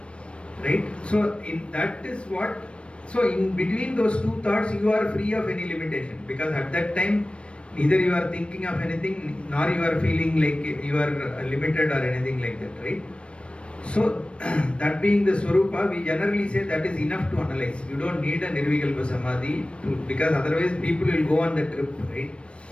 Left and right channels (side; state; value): right; late; 0.059 ms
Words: Right? So in that is what, so in between those two thoughts you are free of any limitation, because at that time neither you are thinking of anything nor you are feeling like you are limited or anything like that, right? So that being the Swarupa, we generally say that is enough to analyze. You don't need a Nirvikalpa Samadhi because otherwise people will go on the trip, right?